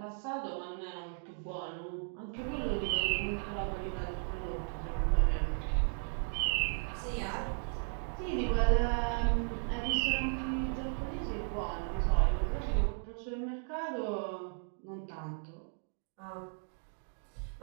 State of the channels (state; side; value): silent; left; 54 dB below the other